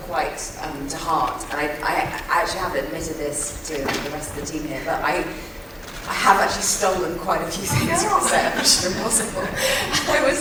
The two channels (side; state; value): both; identical; correlation 1.00